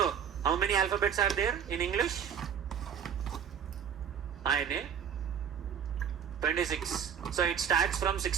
how many alphabets are there in English? INA 26. So, it starts from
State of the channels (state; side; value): quieter; left; 8.0 dB